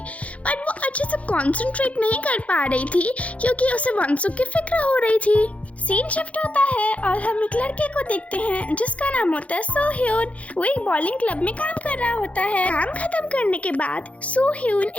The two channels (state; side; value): late; right; 0.065 ms